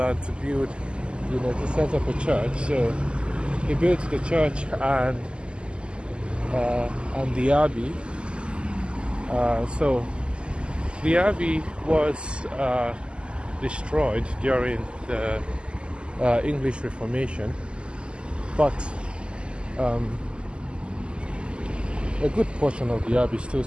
to build, to set up a church. So he built the church and the Abbey. So the Abbey was destroyed during the English Reformation, but a good portion of the Abbey still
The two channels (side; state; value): left; late; 0.051 ms